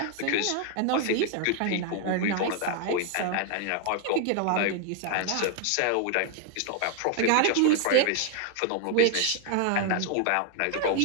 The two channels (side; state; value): both; different; correlation 0.00